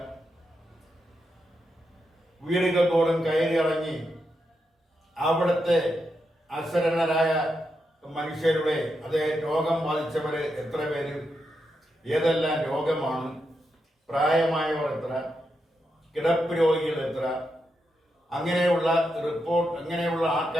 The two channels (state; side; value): normal; both; correlation 0.85